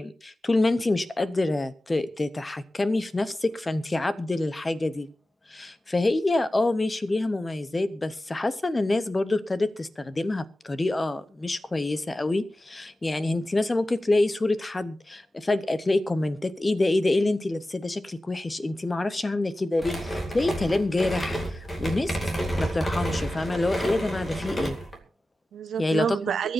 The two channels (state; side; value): normal; both; correlation 0.95